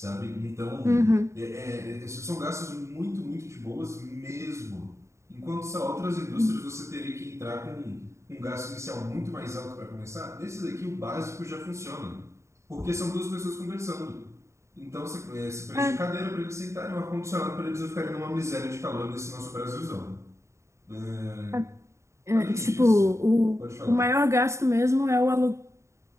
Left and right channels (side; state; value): left; late; 0.14 ms